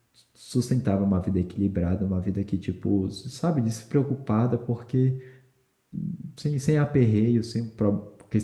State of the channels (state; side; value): identical; both; correlation 1.00